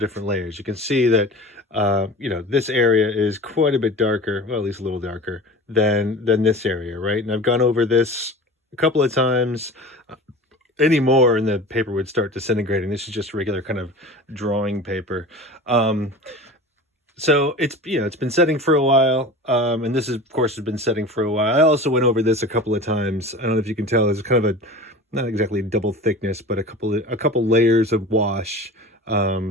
layers. You can see that, this area is quite a bit darker, well, at least a little darker than this area, right? And I've gone over this a couple of times. Any more and the paper would start disintegrating. This is just regular kind of drawing paper. So it's been setting for a while, and this is, of course, has been setting for a while. I also went over this a couple of times. I don't know if you can tell, it's kind of a not exactly double thickness, but a couple layers of wash.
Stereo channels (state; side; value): normal; both; correlation 0.36